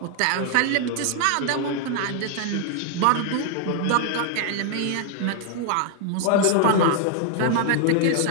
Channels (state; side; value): different; both; correlation 0.00